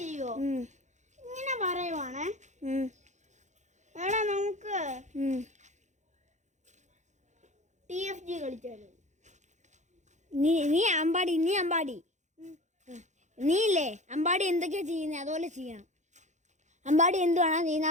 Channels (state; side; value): late; left; 0.34 ms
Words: ഇങ്ങനെ പറയുവാണ്. എടാ നമുക്ക് TFG കളിച്ചാലോ? നീ അമ്പാടി. നീ ഇല്ലേ അമ്പാടി എന്തൊക്കെയാ ചെയ്യുന്നത് അതുപോലെ ചെയ്യണം. അമ്പാടി എന്തുവാണോ ചെയ്യുന്നത്